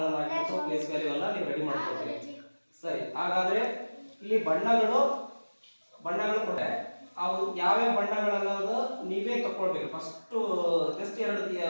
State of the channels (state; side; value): inverted; both; correlation -1.00